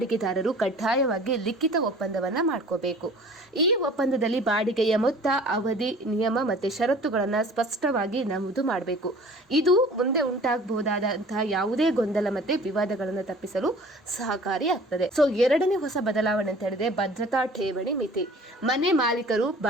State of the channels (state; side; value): normal; both; correlation 0.47